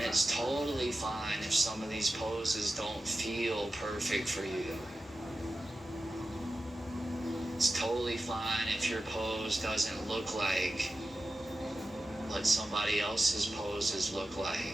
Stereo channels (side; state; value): both; normal; correlation 0.93